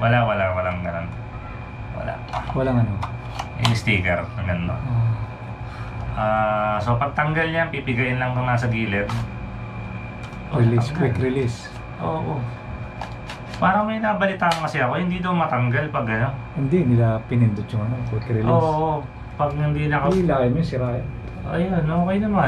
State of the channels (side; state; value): both; identical; correlation 1.00